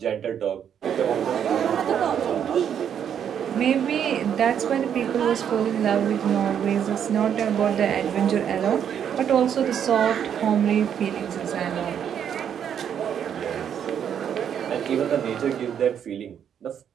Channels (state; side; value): quieter; left; 8.7 dB